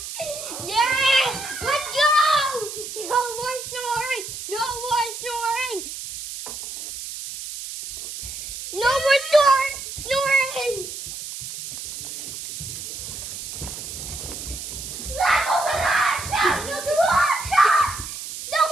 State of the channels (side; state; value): right; noise; hiss, 9 dB below the sound